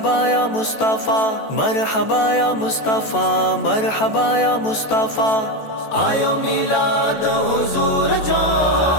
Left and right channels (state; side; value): late; right; 14 ms